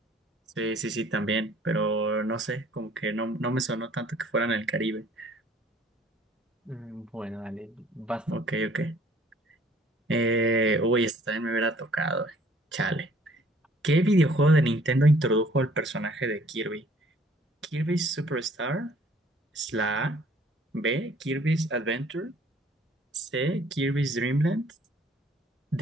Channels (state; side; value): normal; both; correlation 0.57